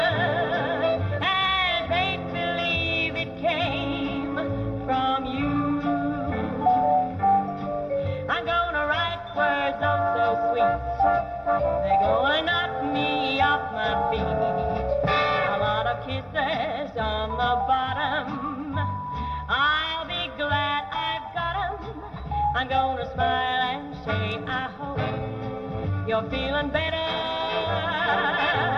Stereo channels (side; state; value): both; identical; correlation 1.00